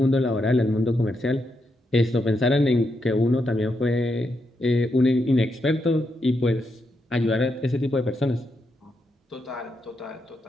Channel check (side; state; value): both; normal; correlation 0.82